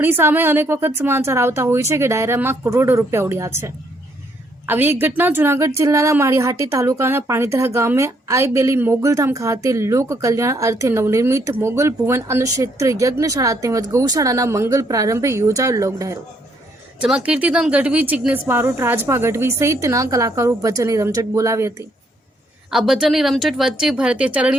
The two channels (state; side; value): normal; both; correlation 0.70